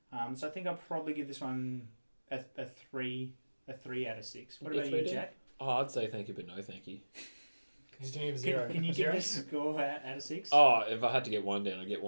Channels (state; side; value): inverted; both; correlation -1.00